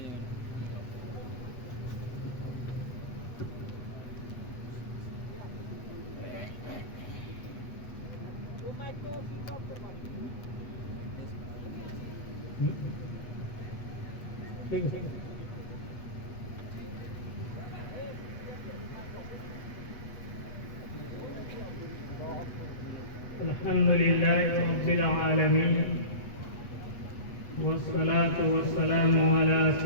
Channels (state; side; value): late; right; 8.1 ms